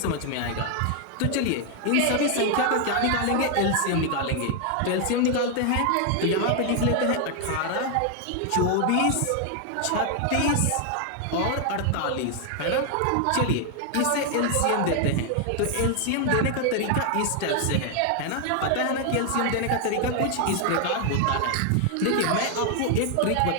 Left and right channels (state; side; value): different; both; correlation 0.00